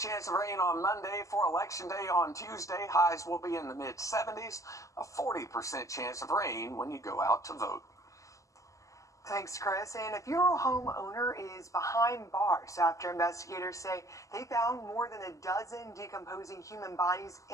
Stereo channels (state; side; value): late; right; 0.16 ms